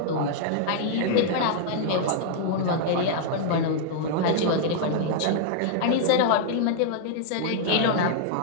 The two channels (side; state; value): both; different; correlation -0.01